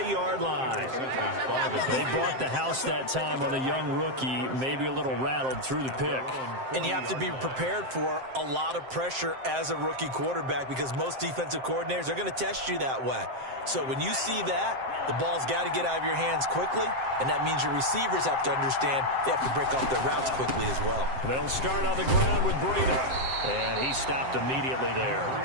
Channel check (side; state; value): left; late; 7.6 ms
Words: line. They brought the house that time on the young rookie, maybe a little rattled through the pick. And you have to be prepared for a lot of pressure as a rookie quarterback because most defensive coordinators are going to test you that way. So when you see that, the ball's got to get out of your hands quickly, and that means your receivers have to understand they have to break off their routes quickly as well. They'll start on the ground with Breida. And he stopped immediately there.